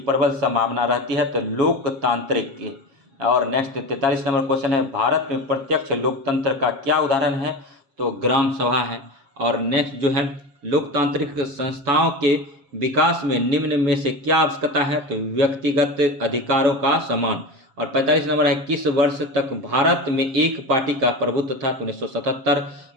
संभावना रहती है? तो लोकतांत्रिक की। और नेक्स्ट 43 नंबर क्वेश्चन है, भारत में प्रत्यक्ष लोकतंत्र का क्या उदाहरण है? तो ग्राम सभा है। और नेक्स्ट जो है, लोकतांत्रिक संस्थाओं के विकास में निम्न में से क्या आवश्यकता है? तो व्यक्तिगत अधिकारों का सम्मान। और 45 नंबर है, किस वर्ष तक भारत में एक पार्टी का प्रभुत्व था? तो 1977।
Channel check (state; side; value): late; left; 7.3 ms